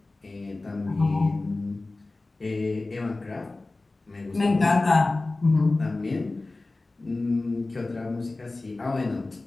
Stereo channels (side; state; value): right; quieter; 3.2 dB